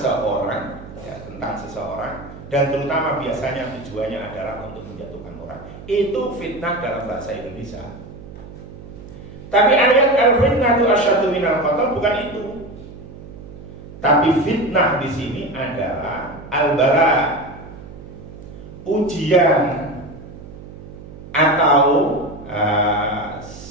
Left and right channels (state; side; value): noise; right; hum, 15 dB below the sound